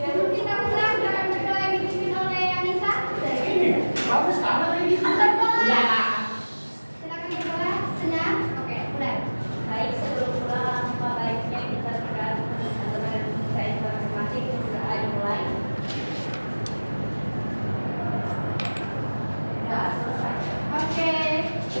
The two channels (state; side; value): inverted; both; correlation -1.00